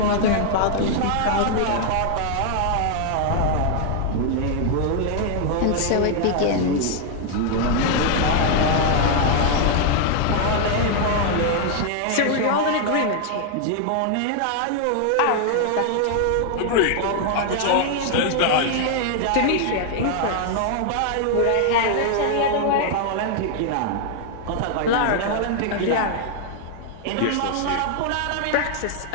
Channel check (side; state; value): both; different; correlation 0.00